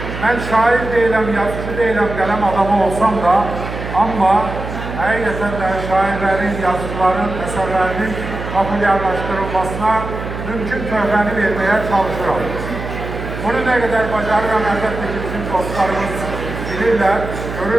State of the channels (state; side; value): noise; right; hum, 8 dB below the sound